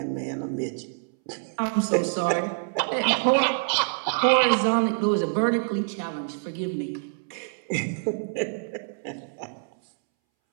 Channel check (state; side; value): silent; left; 61 dB below the other